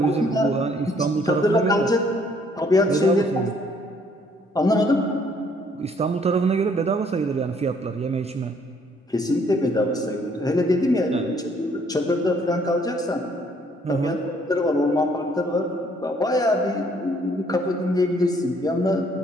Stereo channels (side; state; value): both; normal; correlation 0.64